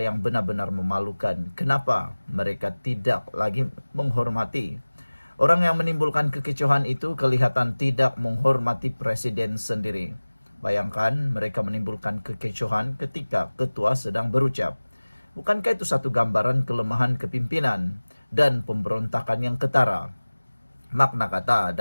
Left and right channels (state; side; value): inverted; both; correlation -1.00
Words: yang benar-benar memalukan. Kenapa mereka tidak lagi menghormati? Orang yang menimbulkan kekecohan itu kelihatan tidak menghormati presiden sendiri. Bayangkan mereka menimbulkan kekecohan ketika ketua sedang berucap. Bukankah itu satu gambaran kelemahan kepimpinan dan pemberontakan yang ketara? Makna kata